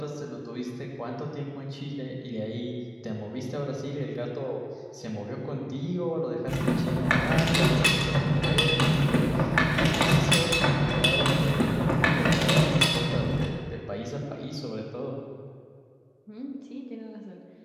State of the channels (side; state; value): both; identical; correlation 1.00